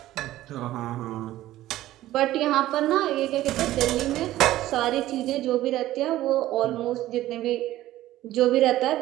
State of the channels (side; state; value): left; quieter; 14.8 dB